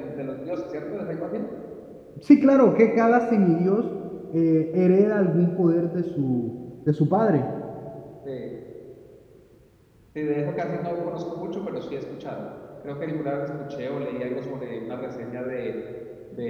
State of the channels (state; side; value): identical; both; correlation 1.00